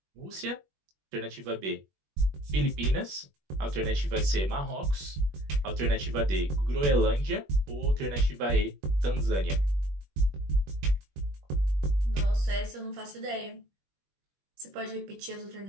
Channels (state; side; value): late; left; 21 ms